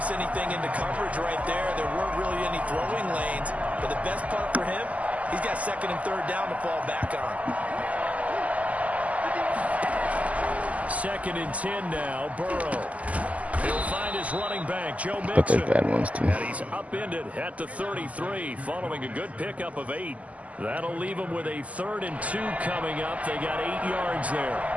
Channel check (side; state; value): left; late; 0.071 ms